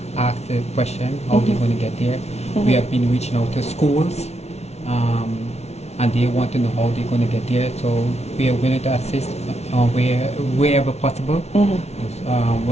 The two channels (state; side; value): late; right; 0.31 ms